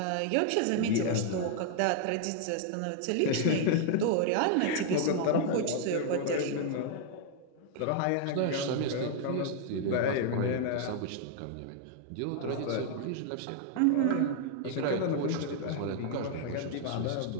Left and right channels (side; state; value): both; different; correlation 0.00